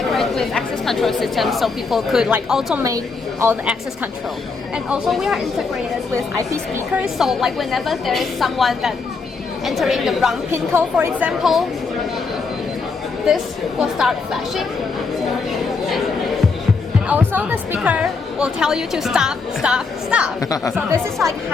with access control systems, so people could like automate all the access control. And also we are integrated with IP speakers, so like whenever there is someone that entering the wrong pin code, for example, this will start flashing. And also the speaker will tell you to stop, stop, stop. So this is like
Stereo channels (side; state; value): right; quieter; 4.5 dB